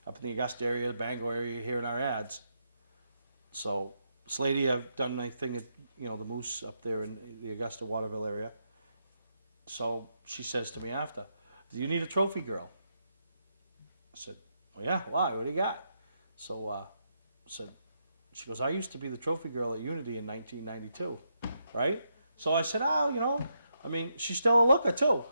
up in the Augusta area, the Bangor area, hearing our ads. So this lady, I've done my thing at, the Moose up there in the Augusta Waterville area. So she says to me after, do you need a trophy girl? I said, well, yeah, why? What do you got? So she goes, I used to be the trophy girl at Unity in 1992, right? So I said, she's still a looker too.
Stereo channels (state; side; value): inverted; both; correlation -0.81